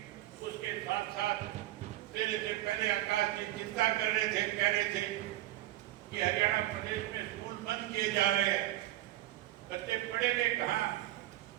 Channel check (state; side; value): quieter; left; 15.3 dB